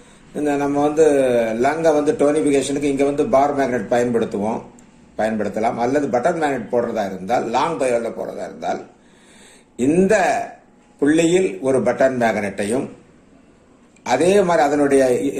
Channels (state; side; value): identical; both; correlation 1.00